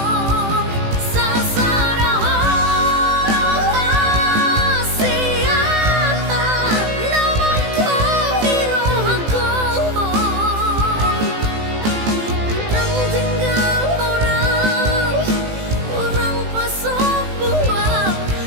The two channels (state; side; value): late; left; 18 ms